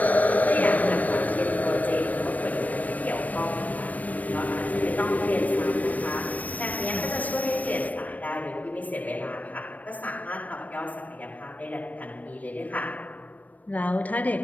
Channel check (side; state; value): right; late; 0.073 ms